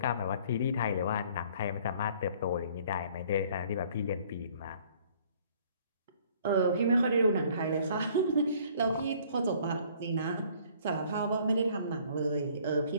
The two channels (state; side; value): inverted; both; correlation -0.57